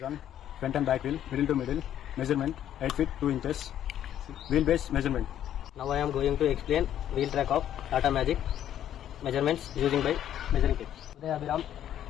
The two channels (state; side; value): quieter; right; 10.9 dB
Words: Front and back wheel middle to middle measurement 8 feet 2 inches wheelbase measurement. Now I am going to explain wheel track of Tata Magic measurements using by measuring tape. Uday Abhiram